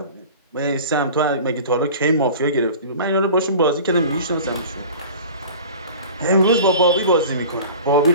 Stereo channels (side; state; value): both; inverted; correlation -0.40